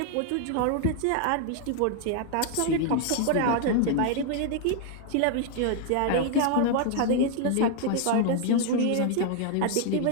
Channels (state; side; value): different; both; correlation 0.00